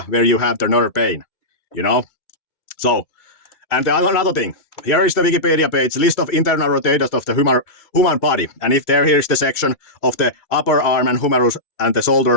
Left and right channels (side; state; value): right; late; 2.3 ms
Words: where you have the nerve pain, you know? So, and another thing, here is the Wikipedia page, list of internal rotators of the human body. And if here is the section of the upper arm and humerus and the